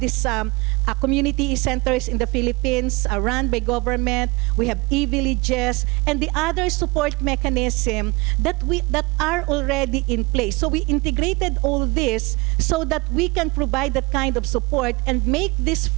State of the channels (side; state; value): left; quieter; 25.5 dB